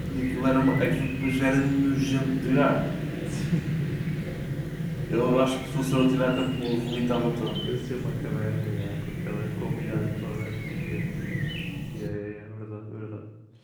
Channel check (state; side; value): identical; both; correlation 1.00